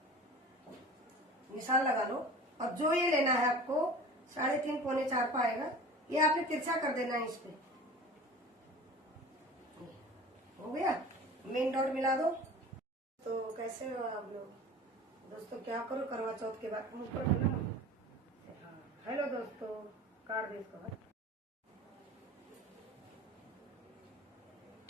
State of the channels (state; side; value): normal; both; correlation 0.39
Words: निशान लगा लो। और जो ये लेना है आपको 3.5 पौने 4 पे आएगा, ये आपने तिरछा कर देना है इस पे। हो गया, मेन डॉट मिला दो। तो कैसे हो आप लोग दोस्तों, क्या करो करवा चौथ के बाद ऊपर है ना। हेलो दोस्तों, काट दे इसको।